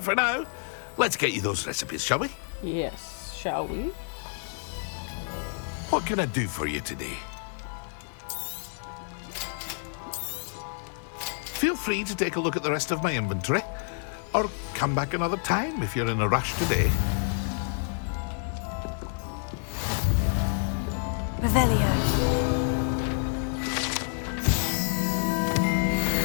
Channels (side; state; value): right; silent; 59 dB below the other